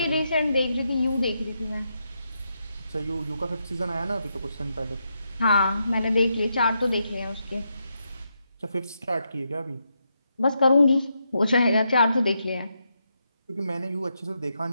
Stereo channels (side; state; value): both; inverted; correlation -0.82